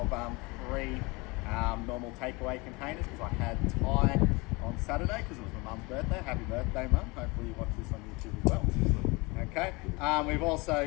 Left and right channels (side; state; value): right; quieter; 25.8 dB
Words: 3 normal takeaway containers because I had Thai on Saturday because it was my mum's birthday. Happy birthday, Mum. Hopefully you watch this on YouTube as well. Okay, we've